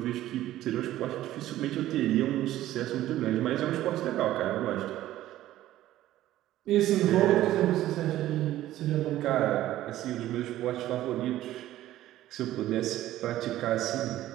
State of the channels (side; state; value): left; quieter; 14.2 dB